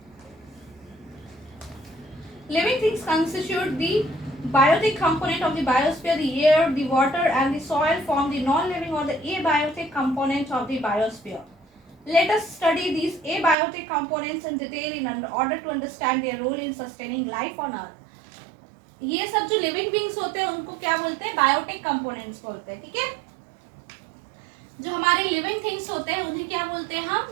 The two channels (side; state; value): left; drops out; at 13.6 s